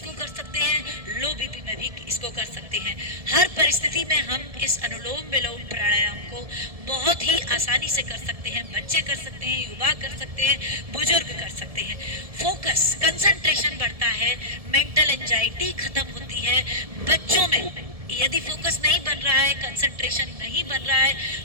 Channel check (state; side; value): late; left; 1.7 ms